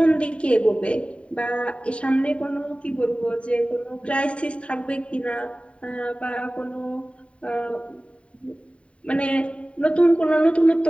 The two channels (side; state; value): right; late; 0.061 ms